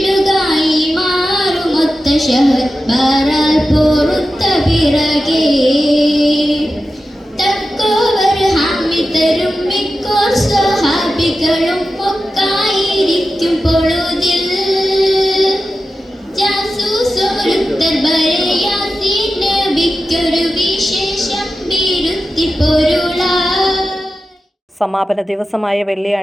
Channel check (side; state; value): both; normal; correlation 0.92